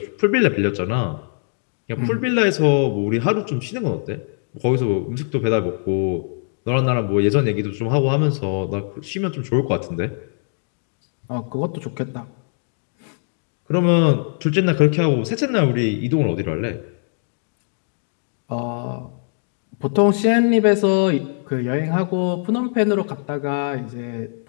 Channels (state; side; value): silent; right; 65 dB below the other